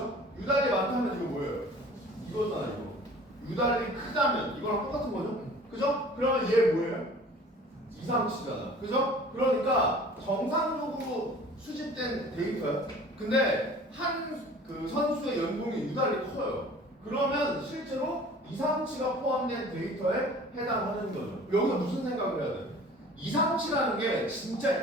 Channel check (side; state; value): both; normal; correlation 0.46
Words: 유달리 많다면 이거 뭐예요? 이거잖아, 이거. 유달리 크다면 이거랑 똑같은 거죠? 그죠? 그러면 얘 뭐예요? 이상치잖아. 그죠? 그러니까 정상적으로 수집된 데이터야. 근데 한 그 선수의 연봉이 유달리 커요. 그러면 실제로 이상치가 포함된 데이터에 해당하는 거죠. 여기서 무슨 생각을 해야 돼? 이상치라는 게